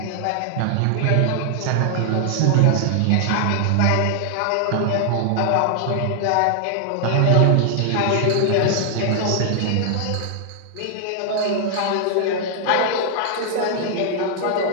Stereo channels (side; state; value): both; different; correlation 0.00